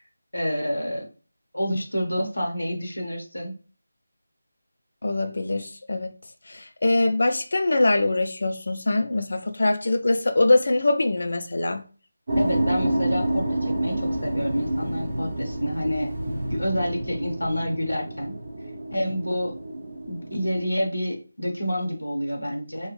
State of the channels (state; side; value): inverted; both; correlation -0.96